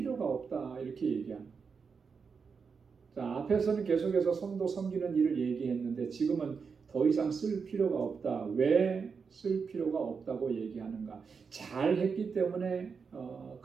없다, 이렇게 얘기합니다. 자, 앞에서는 계속해서 성도 섬기는 일을 얘기했는데 지금은 더 이상 쓸 필요가 없다. 왜 쓸 필요가 없다고 얘기하는가? 잘했기 때문에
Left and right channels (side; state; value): left; quieter; 5.6 dB